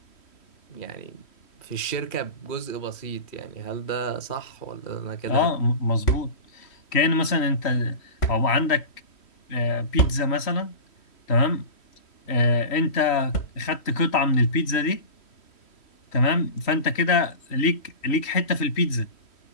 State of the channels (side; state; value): right; late; 3.1 ms